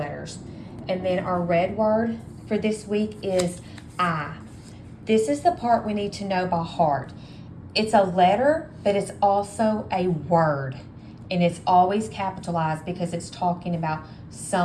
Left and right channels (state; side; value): identical; both; correlation 1.00